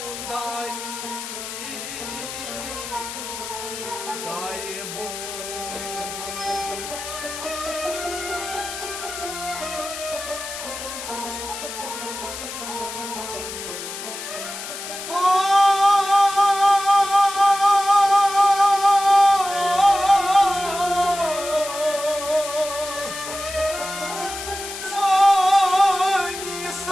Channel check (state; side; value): noise; left; hiss, 8 dB below the sound